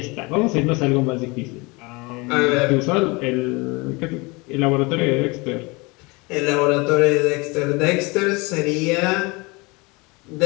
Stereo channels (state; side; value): quieter; right; 26.2 dB